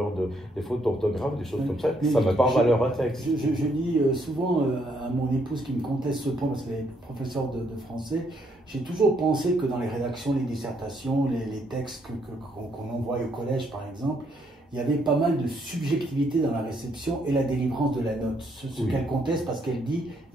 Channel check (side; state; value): both; normal; correlation 0.72